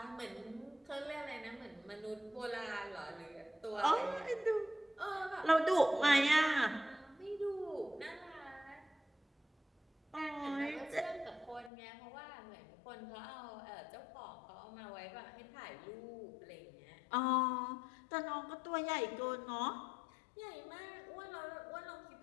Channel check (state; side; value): drops out; right; at 11.7 s